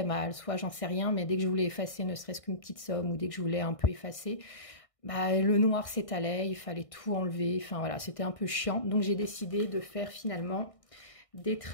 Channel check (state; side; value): late; right; 1.6 ms